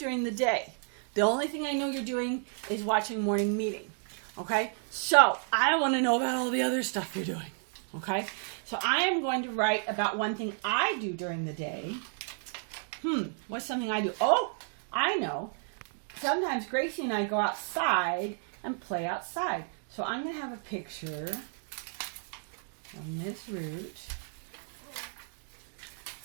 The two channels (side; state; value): left; silent; 57 dB below the other